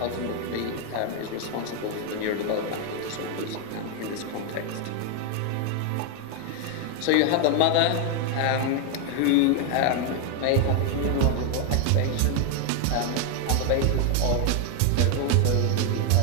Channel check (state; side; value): different; both; correlation 0.01